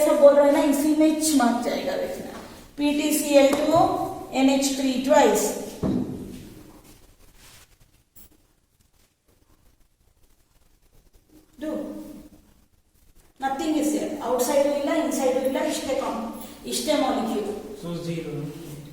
सब बोल रहा है ना, इसी में चमक जाएगा देखना. PTCl2 NH3 twice. Do. Nothing is there. Outside illa, inside illa, ishte molecule. So 0.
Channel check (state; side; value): identical; both; correlation 1.00